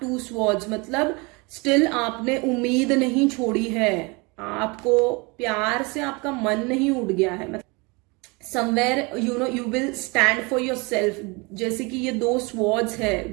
two swords, मतलब स्टिल आपने उम्मीद नहीं छोड़ी है, आपको प्यार से आपका मन नहीं उड़ गया है। मतलब somewhere you will stand for your self, जैसे कि ये 2 स्वॉर्ड्स है,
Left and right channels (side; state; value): left; quieter; 27.8 dB